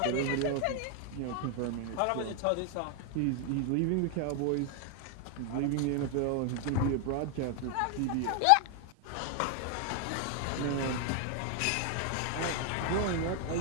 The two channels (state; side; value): different; both; correlation 0.00